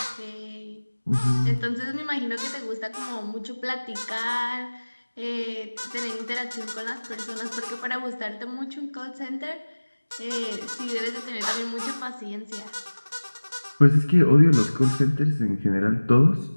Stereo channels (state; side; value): inverted; both; correlation -1.00